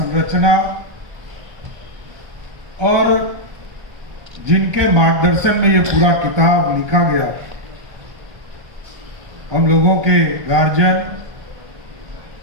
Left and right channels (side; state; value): left; late; 1.2 ms